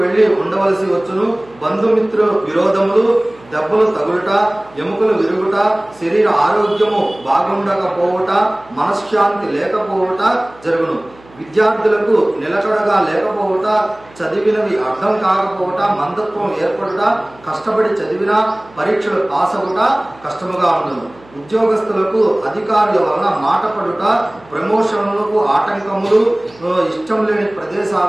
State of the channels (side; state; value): right; noise; hum, 25 dB below the sound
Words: వెళ్లి ఉండవలసి వచ్చును. బంధుమిత్రు విరోధములు, దెబ్బలు తగులుట, ఎముకలు విరుగుట, శరీర ఆరోగ్యము బాగుండకపోవట, మనశ్శాంతి లేకపోవట జరుగును. విద్యార్థులకు నిలకడగా లేకపోవట, చదివినవి అర్థం కాకపోవట, మందత్వం ఏర్పడుట, కష్టపడి చదివిన పరీక్షలు పాస్ అవుట కష్టముగా ఉండదు. ఉద్యోగస్తులకు అధికారుల వలన మాట పడుట, ప్రమోషన్లకు ఆటంకములు, ఇష్టం లేని